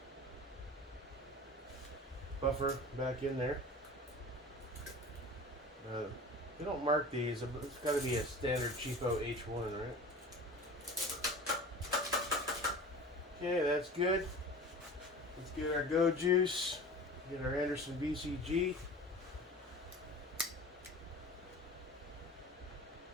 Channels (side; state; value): both; normal; correlation 0.38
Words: buffer back in there. They don't mark these. It's got to be a standard cheapo H1, right? Okay, that's good. Let's get our go juice. Get our Anderson BCG.